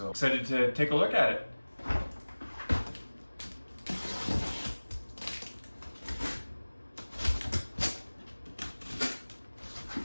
excited to take a look at it.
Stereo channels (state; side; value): inverted; both; correlation -1.00